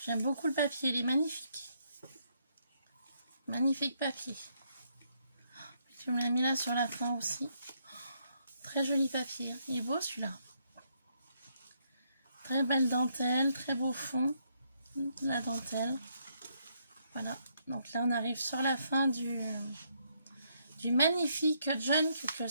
J'aime beaucoup le papier, il est magnifique. Magnifique papier. Tu me l'as mis là sur la fin aussi. Très joli papier. Il est beau celui-là. Très belle dentelle, très beau fond. La dentelle. Voilà. Donc là, on arrive sur la fin du magnifique junk que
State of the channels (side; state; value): both; inverted; correlation -0.74